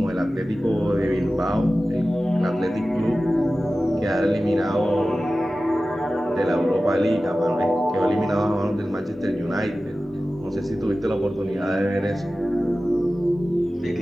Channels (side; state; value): both; normal; correlation 0.95